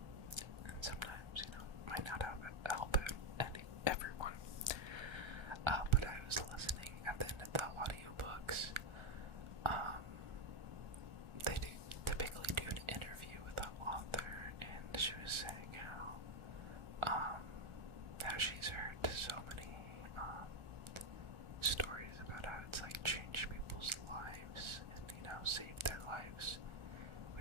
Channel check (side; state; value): left; late; 1.3 ms